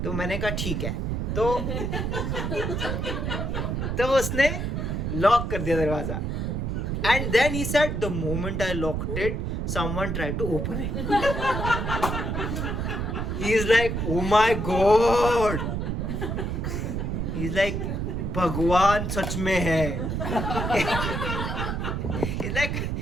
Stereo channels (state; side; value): noise; right; rumble, 1 dB below the sound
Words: तो मैंने कहा ठीक है, तो उसने लॉक कर दिया दरवाज़ा। And then he said the moment I locked it someone tried to open it. He's like, oh my god. He's like, भगवान सच में है.